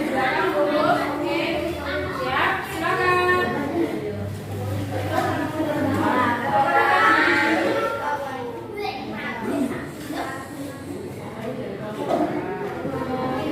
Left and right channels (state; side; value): identical; both; correlation 1.00